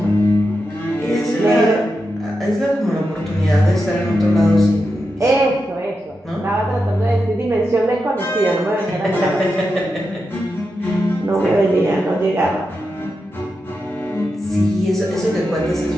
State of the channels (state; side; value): normal; both; correlation 0.88